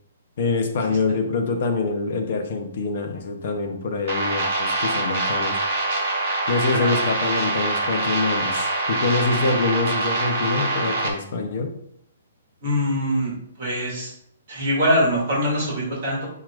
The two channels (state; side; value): inverted; both; correlation -0.55